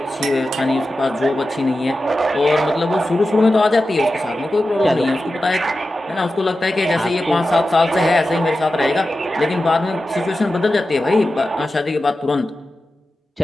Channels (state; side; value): normal; both; correlation 0.93